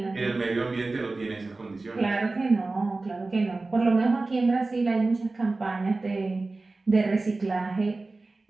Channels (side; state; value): left; quieter; 3.4 dB